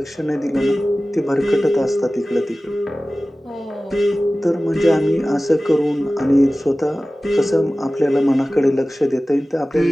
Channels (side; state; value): both; normal; correlation 0.97